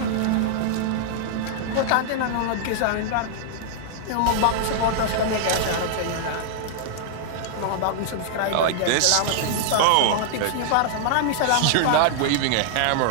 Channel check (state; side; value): different; both; correlation -0.01